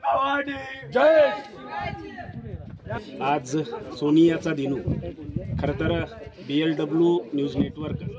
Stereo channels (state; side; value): identical; both; correlation 1.00